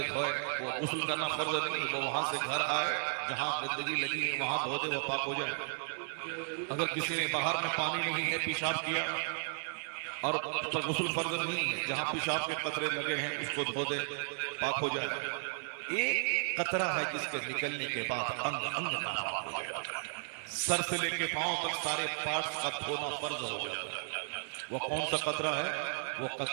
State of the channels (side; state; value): left; silent; digital silence